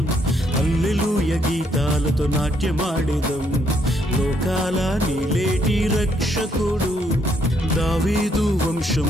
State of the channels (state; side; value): normal; both; correlation 0.72